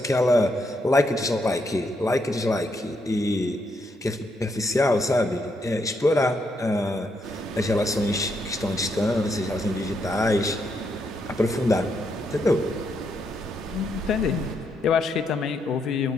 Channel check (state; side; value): normal; both; correlation 0.78